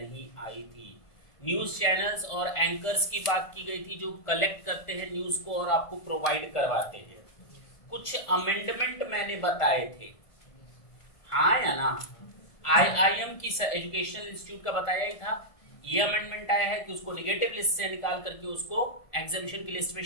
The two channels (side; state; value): right; late; 1.5 ms